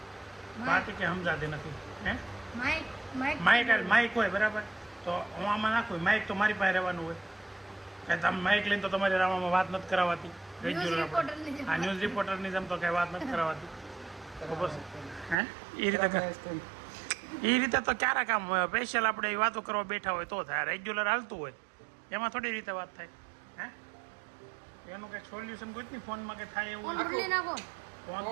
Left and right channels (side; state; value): left; drops out; at 15.4 s